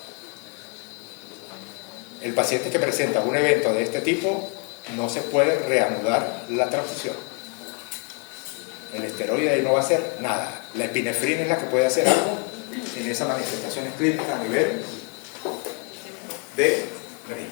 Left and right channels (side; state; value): right; quieter; 36.3 dB